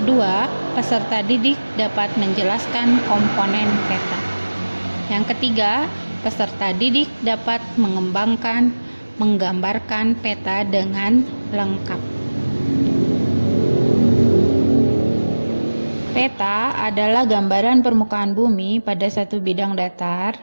kedua, peserta didik dapat menjelaskan komponen peta. Yang ketiga, peserta didik dapat menggambarkan peta dengan lengkap. Peta adalah gambaran permukaan bumi pada satu bidang datar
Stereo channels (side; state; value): both; inverted; correlation -1.00